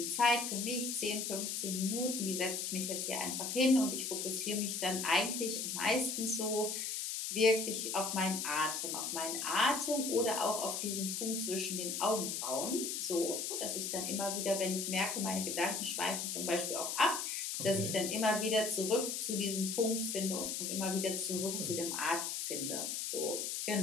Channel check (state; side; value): noise; left; hiss, 2 dB below the sound